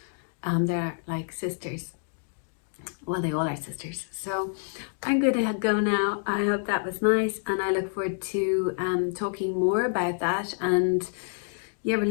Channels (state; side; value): silent; right; digital silence